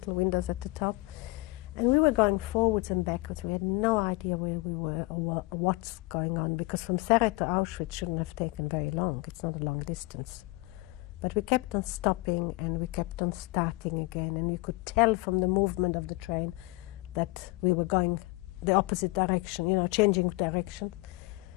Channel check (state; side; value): quieter; right; 23.1 dB